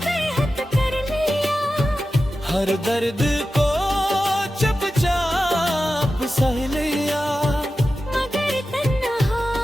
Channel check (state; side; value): normal; both; correlation 0.93